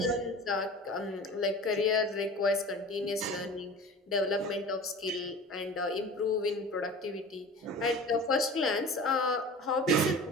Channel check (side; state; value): both; normal; correlation 0.38